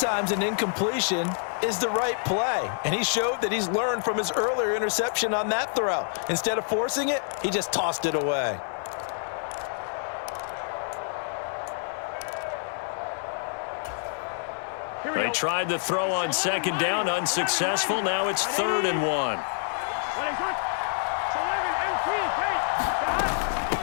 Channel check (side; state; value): right; silent; digital silence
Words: an incompletion is the right play, and he showed that he's learned from his earlier interception on that throw. Instead of forcing it, he just tossed it away. They tried the throw on 2nd down, unsuccessful. Now it's 3rd and 1.